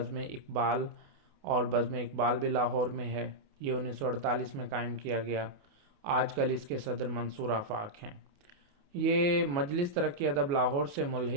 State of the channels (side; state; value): left; late; 28 ms